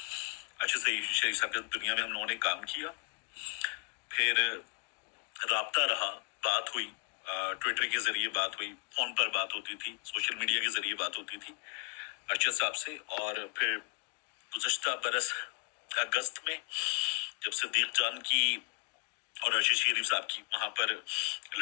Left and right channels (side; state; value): right; quieter; 38.5 dB